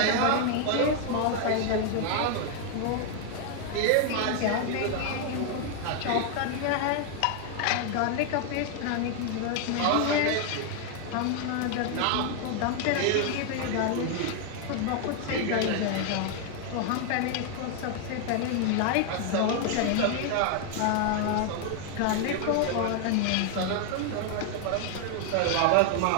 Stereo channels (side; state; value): both; different; correlation 0.00